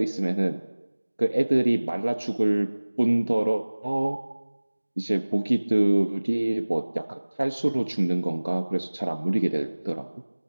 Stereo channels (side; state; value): both; inverted; correlation -1.00